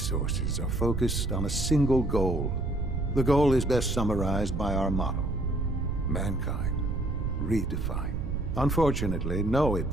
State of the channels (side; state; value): right; noise; rumble, 2 dB below the sound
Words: are focused on a single goal. The goal is best summarized by our motto: mankind, redefined. Unfortunately, no